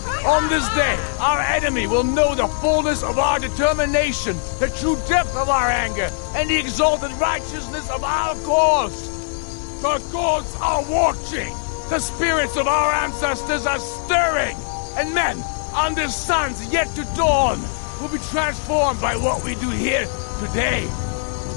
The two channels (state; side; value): silent; right; 60 dB below the other